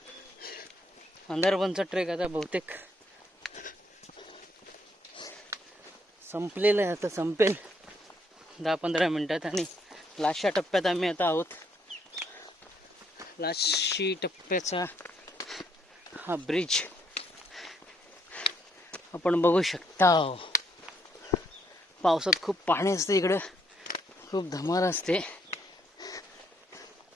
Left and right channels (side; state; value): both; normal; correlation 0.71